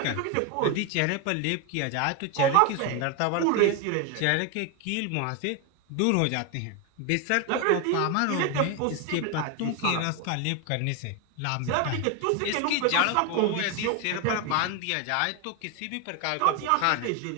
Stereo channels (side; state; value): both; different; correlation 0.01